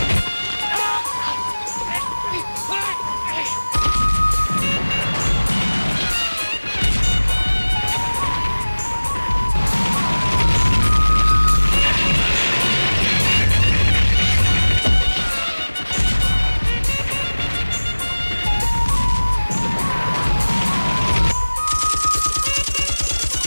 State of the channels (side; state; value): both; inverted; correlation -1.00